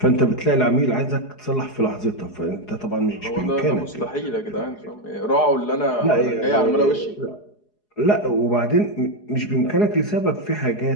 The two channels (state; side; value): late; right; 4.8 ms